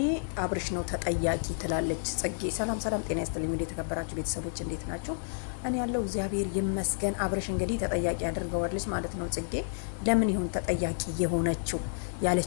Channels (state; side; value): silent; right; digital silence